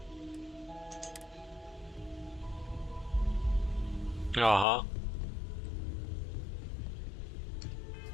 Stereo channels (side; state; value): right; drops out; at 4.7 s